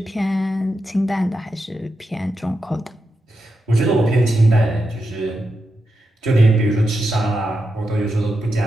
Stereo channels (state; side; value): normal; both; correlation 0.87